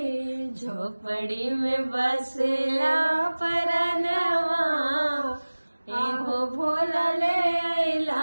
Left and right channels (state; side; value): inverted; both; correlation -1.00